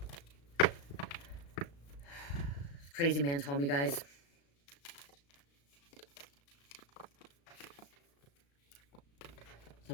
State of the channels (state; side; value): late; right; 35 ms